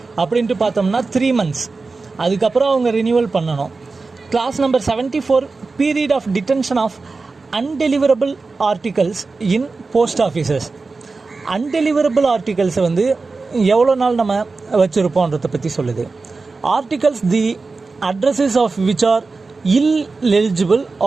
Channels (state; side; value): quieter; left; 4.0 dB